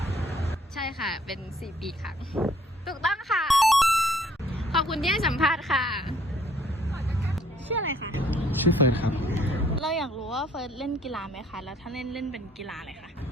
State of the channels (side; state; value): both; normal; correlation 0.61